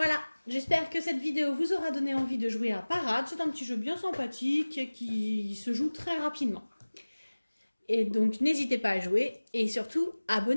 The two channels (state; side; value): inverted; both; correlation -1.00